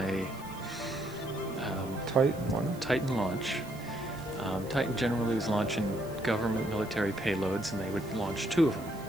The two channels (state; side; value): noise; right; hiss, 21 dB below the sound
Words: a Titan launch. Titan generally was launching government military payloads, and they would launch 2 of them.